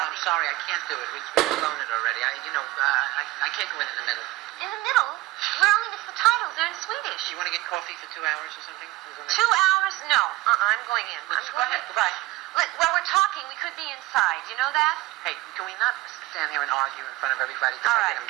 I'm sorry. I can't do it. We've blown it already. I can't go in the middle. In the middle? We're only missed the titles. They're in Swedish. You want to get coffee for 2 hours or something? 2 hours? No. I'm going in. Go ahead. Goodbye. While we're talking, we could be inside. You know that? Hey, can we not stand here and argue in front of everybody? All I right. get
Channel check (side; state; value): left; quieter; 18.8 dB